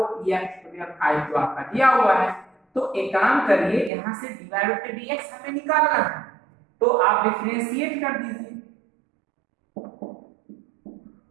ex to the power 5 जो आपका दिया हुआ है। तो एक काम करिए, यहां से dy बाय dx हमें निकालना है, तो आप डिफरेंशिएट कर दीजिए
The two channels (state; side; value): drops out; left; at 3.9 s